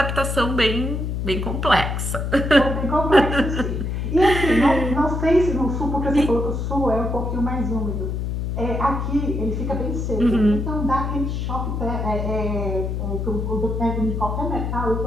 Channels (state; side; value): noise; left; hum, 2 dB below the sound